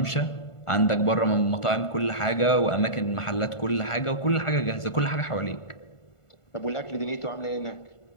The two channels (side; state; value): right; late; 1.4 ms